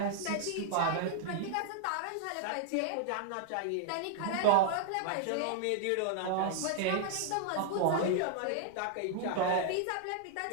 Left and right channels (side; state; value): both; different; correlation -0.01